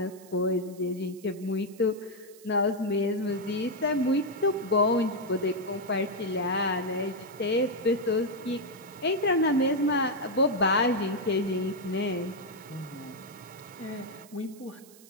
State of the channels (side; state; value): right; noise; hiss, 23 dB below the sound